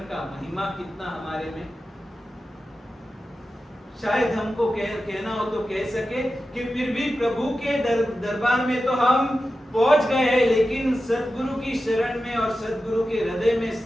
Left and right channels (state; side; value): normal; both; correlation 0.92